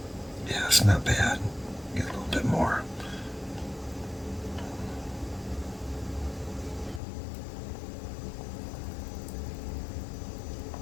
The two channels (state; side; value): drops out; right; at 7.0 s